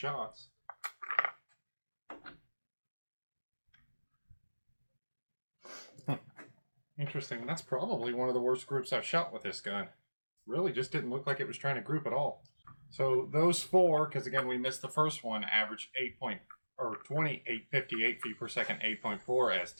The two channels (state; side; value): inverted; both; correlation -1.00